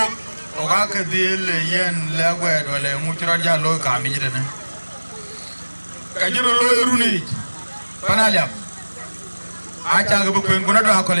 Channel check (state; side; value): inverted; both; correlation -1.00